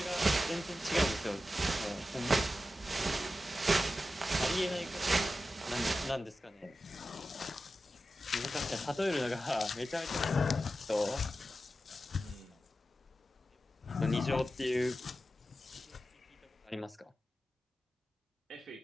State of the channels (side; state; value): both; normal; correlation 0.92